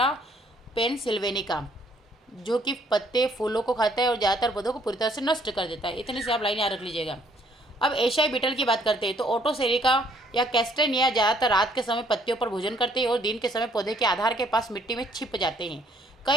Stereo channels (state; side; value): normal; both; correlation 0.64